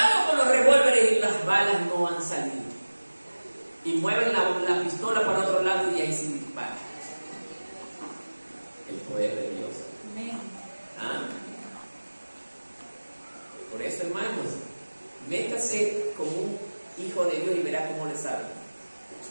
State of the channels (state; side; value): inverted; both; correlation -1.00